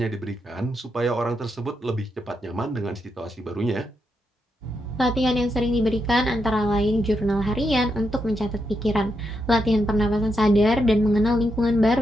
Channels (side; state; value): both; normal; correlation 0.83